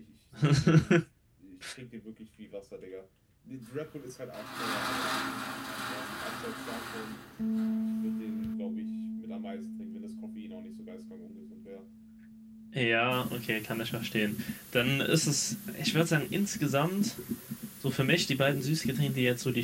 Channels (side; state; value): both; identical; correlation 1.00